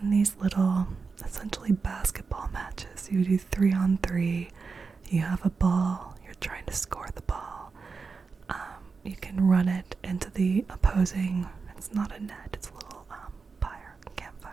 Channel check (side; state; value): left; quieter; 4.8 dB